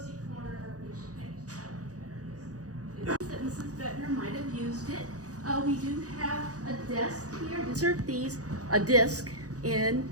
That Mrs. Bettner might have used it. We do have a desk here. Insert a disc in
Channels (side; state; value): left; late; 0.67 ms